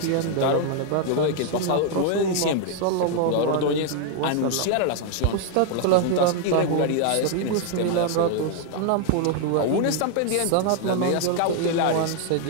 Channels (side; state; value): both; different; correlation 0.00